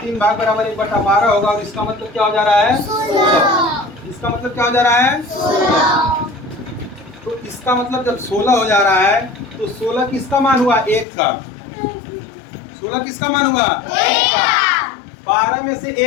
भाग बराबर 1/12 होगा। और इसका मतलब क्या हो जा रहा है? 16। इसका मतलब क्या हो जा रहा है? 16। तो इसका मतलब जब 16 हो जा रहा है तो 16 किसका मान हुआ? 1 का। 16 किसका मान हुआ? 1 का। 12 में से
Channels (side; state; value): right; drops out; at 11.1 s